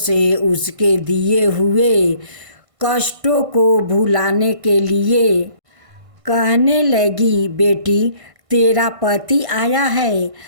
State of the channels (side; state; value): left; late; 1.5 ms